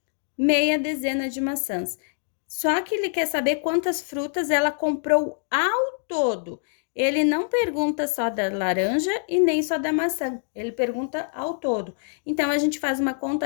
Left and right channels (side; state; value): right; silent; digital silence